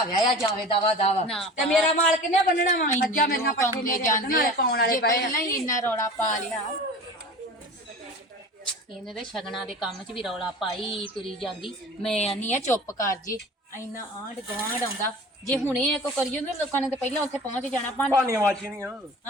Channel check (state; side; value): normal; both; correlation 0.38